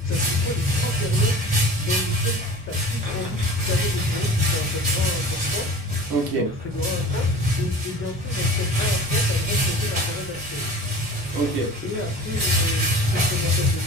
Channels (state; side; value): normal; both; correlation 0.40